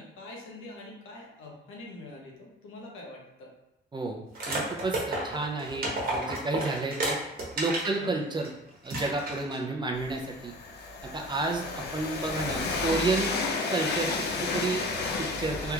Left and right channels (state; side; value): normal; both; correlation 0.40